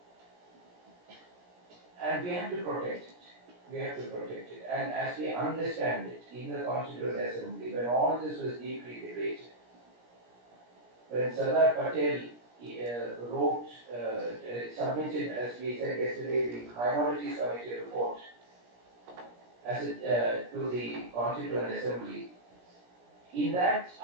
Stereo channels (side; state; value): left; late; 17 ms